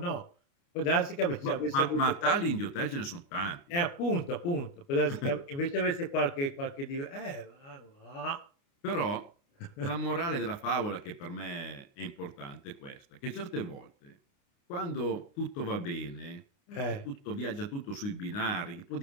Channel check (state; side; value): late; right; 29 ms